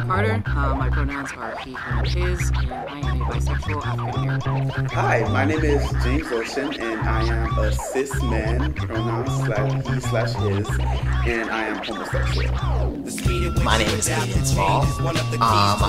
My pronouns are he, him, and his, and I am a bisexual African American. Hi, my name is James Ocean, and I am a cis man, pronouns /he/his, and I am homosexual. My name is Cadin Small.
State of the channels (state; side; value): identical; both; correlation 1.00